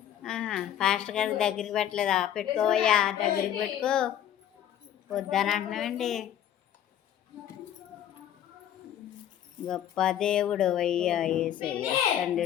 ఫాస్ట్ గారి దగ్గరికి పెట్టలేదా? పెట్టుకోవయ్యా, దగ్గరికి పెట్టుకో. వద్దని అంటున్నావండి. గొప్ప దేవుడు అయ్యా యేసయ్య,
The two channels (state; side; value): quieter; right; 10.5 dB